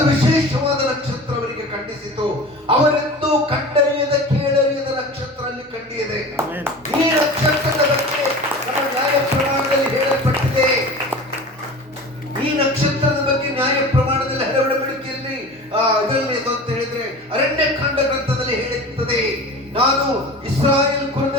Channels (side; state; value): both; normal; correlation 0.36